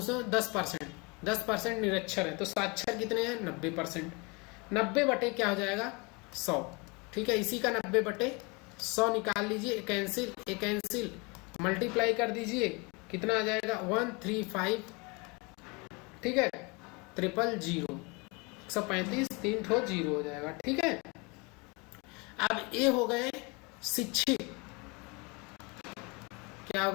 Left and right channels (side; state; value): right; quieter; 28.7 dB